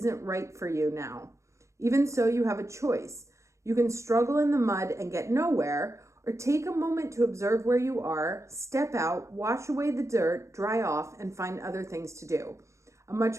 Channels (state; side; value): late; left; 0.14 ms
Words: right for you now. Even so, you have a choice. You can struggle in the mud and get nowhere, or take a moment to observe where you are, step out, wash away the dirt, dry off, and find other things to do. A